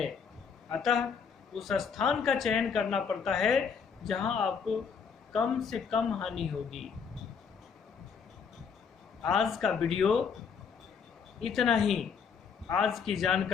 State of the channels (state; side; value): quieter; right; 6.2 dB